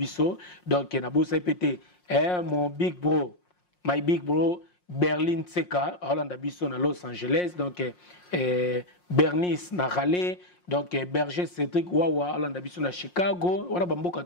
donc na bosa pété mon big bro my big bro Berlin Tseka, Hollande Abisso à Los Angeles, donc Bernice na Raleigh, donc Berger Cédric Wawa, Hollande Abisso à Chicago, on a bamboka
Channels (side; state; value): right; late; 5.6 ms